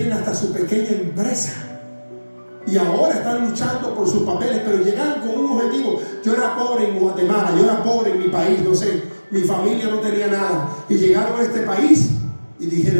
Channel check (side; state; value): both; inverted; correlation -1.00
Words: hasta su pequeña empresa y ahora están luchando por sus papeles, pero llegaron con un objetivo. Yo era pobre en Guatemala, yo era pobre en mi país, no sé, mi familia no tenía nada, y llegaron a este país y